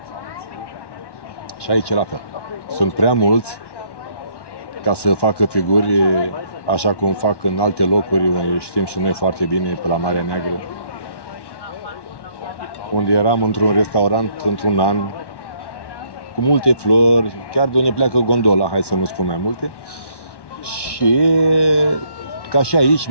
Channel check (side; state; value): right; late; 1.1 ms